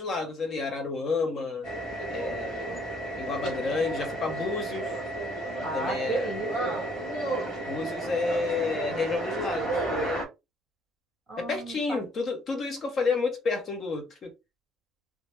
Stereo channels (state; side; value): normal; both; correlation 0.63